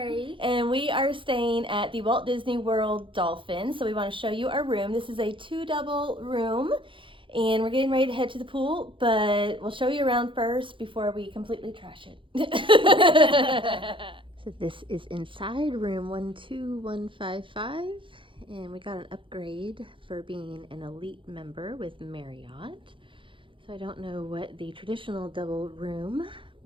and we are staying at the Walt Disney World Dolphin. So we want to show you our room. This is a 2 double room, and we're getting ready to head to the pool, but we'll show you around first before we completely trash it. So this is inside room 12155, and we got an upgrade for being an elite member with Marriott. So I don't know what the traditional double room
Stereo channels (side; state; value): left; late; 0.25 ms